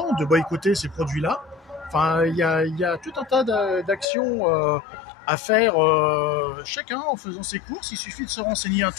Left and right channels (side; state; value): right; drops out; at 4.0 s